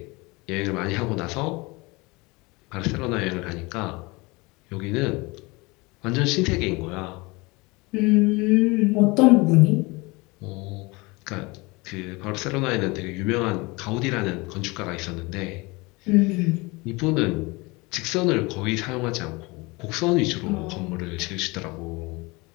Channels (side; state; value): right; quieter; 24.9 dB